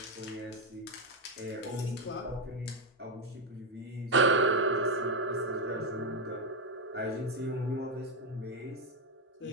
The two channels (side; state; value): both; normal; correlation 0.06